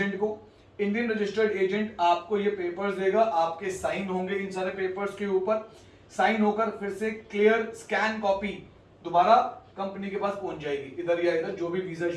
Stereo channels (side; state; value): both; identical; correlation 1.00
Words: को। इंडियन रजिस्टर्ड एजेंट आपको ये पेपर्स देगा, आपके साइन होंगे इन सारे पेपर्स के ऊपर, साइन होकर फिर से क्लियर स्कैन कॉपी दोबारा कंपनी के पास पहुंच जाएगी, इधर या इधर जो भी वीजा